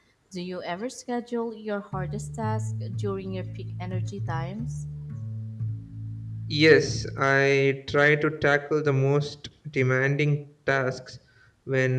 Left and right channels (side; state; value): both; identical; correlation 1.00